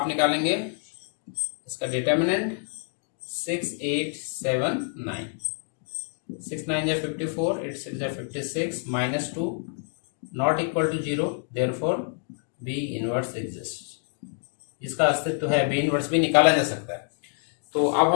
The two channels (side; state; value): right; silent; 60 dB below the other